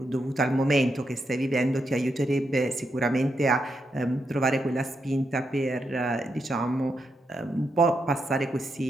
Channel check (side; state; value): both; normal; correlation 0.83